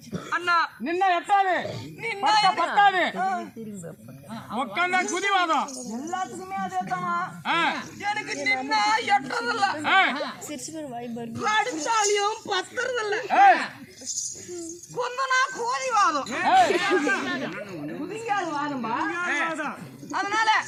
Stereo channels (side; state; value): both; identical; correlation 1.00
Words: அண்ணா. நின்ன எட்டாது பத்தாது உட்காந்தா குதிவாதம் எல்லாத்துக்குமே அதே தானா? எனக்கு நின்னா எட்டதில்ல, அடிச்சாலியும் பத்துறதில்ல, கொந்தனா கோதி வாதம் குதிங்கால் வாதம்பா. அதனால